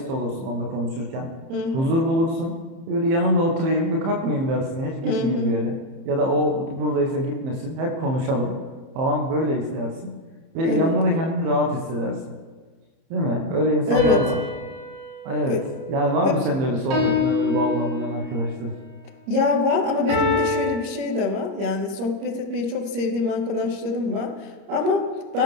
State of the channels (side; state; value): left; late; 30 ms